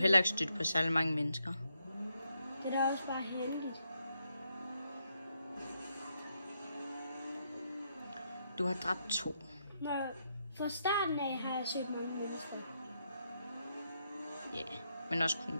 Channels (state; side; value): inverted; both; correlation -0.80